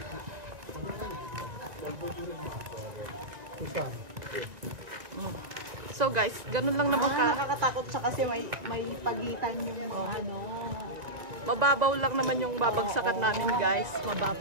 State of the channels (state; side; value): late; left; 1.9 ms